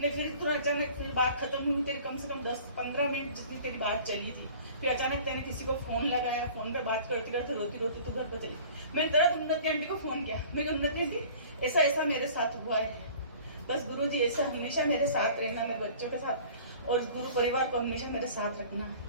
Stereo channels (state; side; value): inverted; both; correlation -0.46